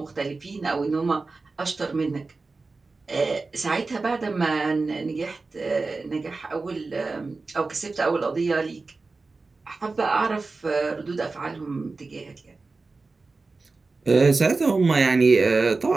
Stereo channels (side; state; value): left; quieter; 3.8 dB